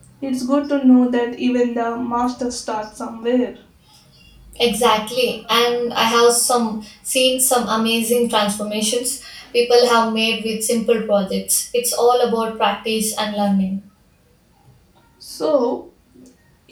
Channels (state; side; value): identical; both; correlation 1.00